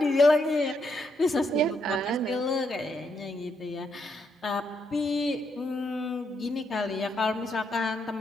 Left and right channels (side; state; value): both; normal; correlation 0.78